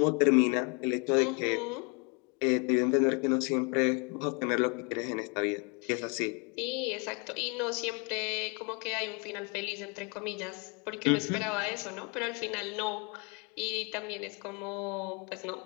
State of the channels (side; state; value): right; quieter; 32.0 dB